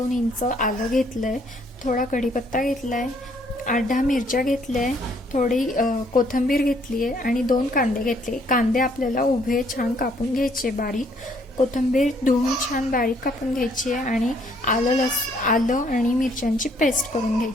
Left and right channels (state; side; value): normal; both; correlation 0.66